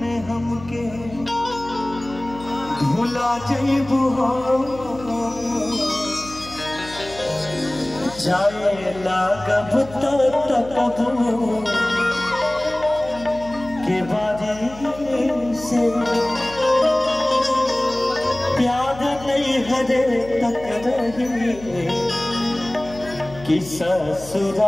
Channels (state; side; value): noise; left; hum, 17 dB below the sound